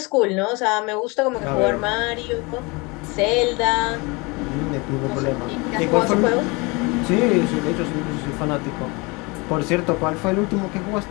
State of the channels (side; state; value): right; quieter; 26.9 dB